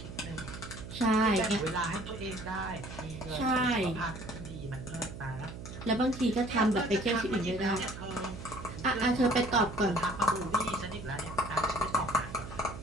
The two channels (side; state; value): right; noise; hum, 11 dB below the sound